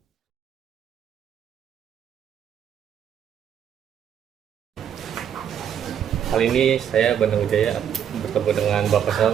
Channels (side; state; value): left; quieter; 8.9 dB